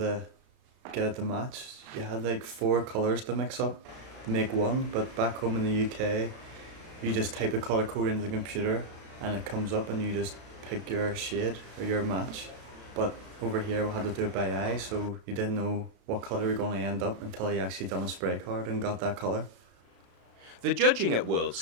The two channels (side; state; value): left; late; 35 ms